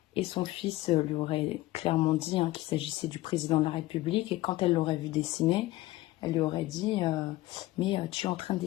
Et son fils lui aurait clairement dit qu'il s'agissait du président de la République. Et quand elle l'aurait vu dessiner, elle lui aurait dit mais tu es en train de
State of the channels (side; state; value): right; quieter; 17.5 dB